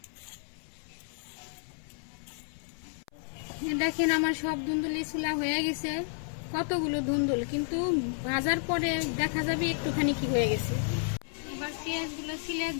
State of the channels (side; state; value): right; silent; 57 dB below the other